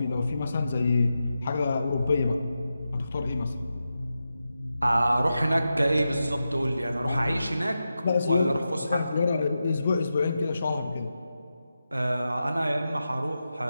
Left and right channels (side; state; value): both; inverted; correlation -0.90